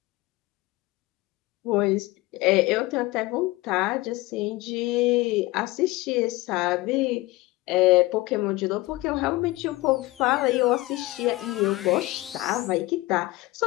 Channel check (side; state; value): right; quieter; 20.2 dB